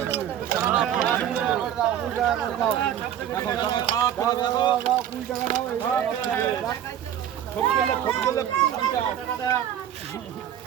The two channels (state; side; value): quieter; left; 10.4 dB